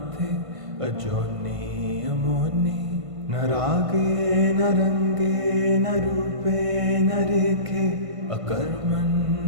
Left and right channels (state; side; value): late; left; 1.5 ms